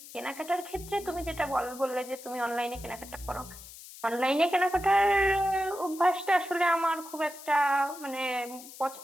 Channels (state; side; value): noise; left; hiss, 16 dB below the sound